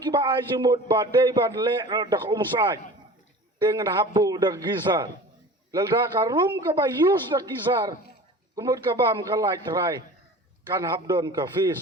kiba ay jumut badai badle dak umsai dengan habu dak gizar. Lalda karum kaba yus dak gizar. Kumut kabam kalai terai kan habdon ka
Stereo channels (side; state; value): both; normal; correlation 0.39